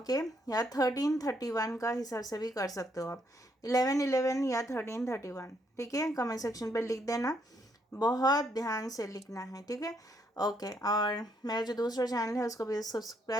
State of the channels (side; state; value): both; normal; correlation 0.73